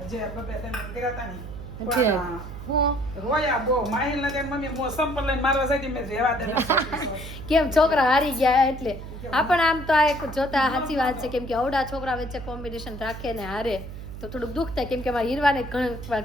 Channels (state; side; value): noise; right; hum, 11 dB below the sound